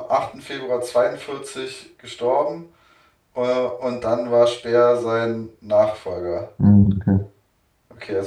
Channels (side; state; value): both; identical; correlation 1.00